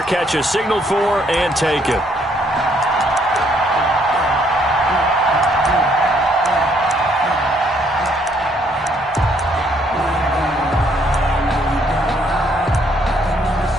catch is signaled for and taken.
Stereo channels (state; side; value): normal; both; correlation 0.68